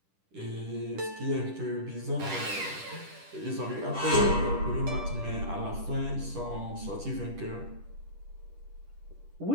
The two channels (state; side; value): late; left; 10 ms